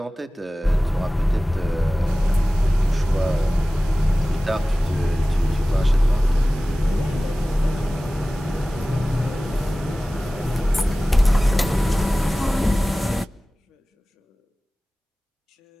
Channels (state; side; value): normal; both; correlation 0.98